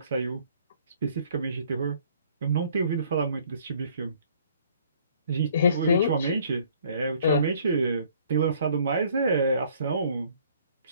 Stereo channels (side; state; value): both; inverted; correlation -0.59